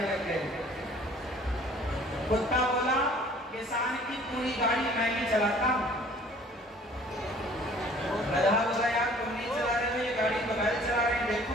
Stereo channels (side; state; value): both; normal; correlation 0.53